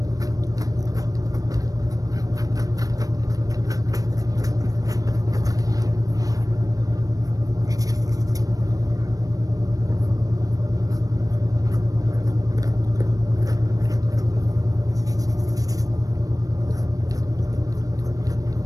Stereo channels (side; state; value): left; late; 0.17 ms